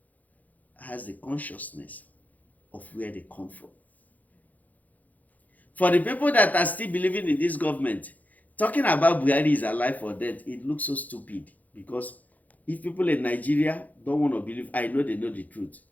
has the consciousness of where they come from. For the people that are still believing in this government, talking about Buhari is alive or dead, it looks so stupid. Because if people in Nigeria don't want to believe, I know they know the truth.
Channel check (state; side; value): late; right; 0.079 ms